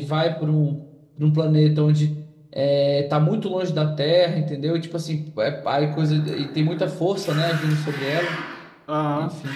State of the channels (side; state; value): both; identical; correlation 1.00